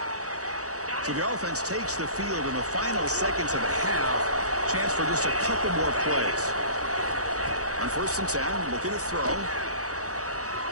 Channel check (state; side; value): late; left; 0.66 ms